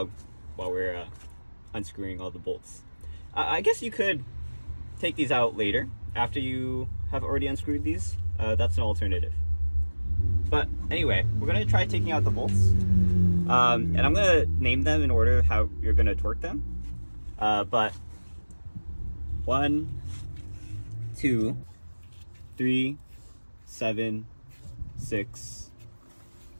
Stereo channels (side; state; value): both; inverted; correlation -1.00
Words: while we're unscrewing all the bolts. I guess you could take these out later after you have already unscrewed these. That's an alternative. But anyway, we're going to try taking out the bolts. And I'm going to name them in order how you're going to torque them. But 1, 2, 3, 7, 6,